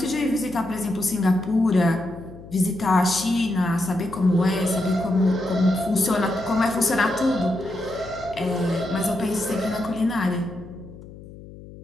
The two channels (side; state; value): left; noise; hum, 17 dB below the sound